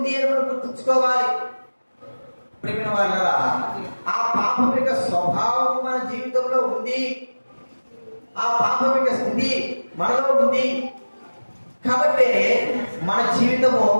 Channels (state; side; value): inverted; both; correlation -1.00